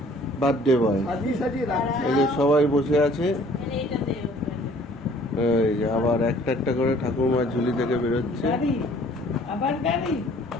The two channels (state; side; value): normal; both; correlation 0.55